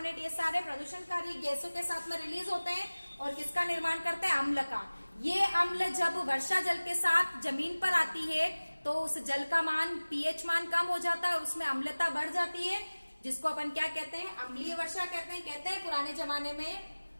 ये सारे प्रदूषणकारी गैसों के साथ में रिलीज होते हैं, और किसका निर्माण करते हैं, अम्ल का। ये अम्ल जब वर्षा जल के साथ जमीन पर आती है तो उस जल का मान, पीएच मान कम हो जाता है, और उसमें अम्लता बढ़ जाती है, जिसको अपन क्या कहते हैं, अम्लीय वर्षा कहते हैं। पुराने जमाने में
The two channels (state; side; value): inverted; both; correlation -1.00